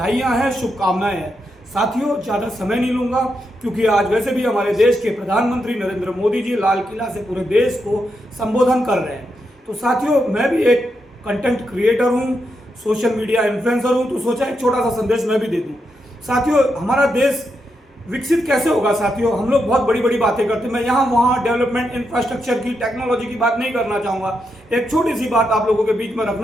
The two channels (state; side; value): normal; both; correlation 0.83